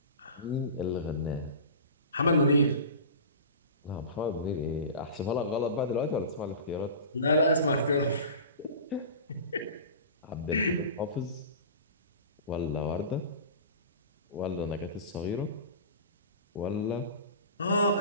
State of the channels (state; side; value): inverted; both; correlation -0.34